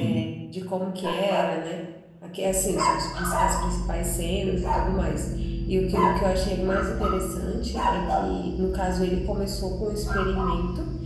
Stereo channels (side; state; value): both; identical; correlation 1.00